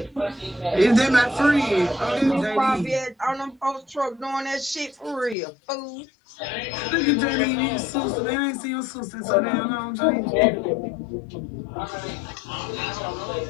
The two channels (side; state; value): right; drops out; at 5.4 s